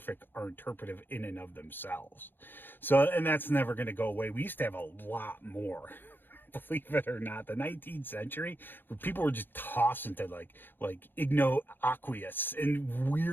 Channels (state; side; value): late; right; 0.096 ms